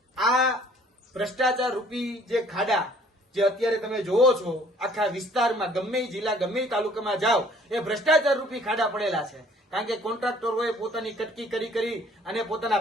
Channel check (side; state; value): both; normal; correlation 0.57